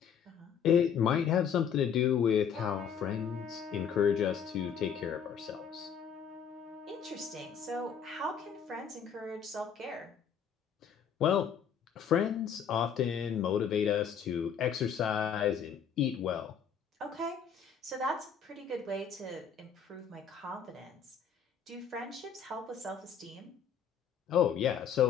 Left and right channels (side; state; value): right; quieter; 7.4 dB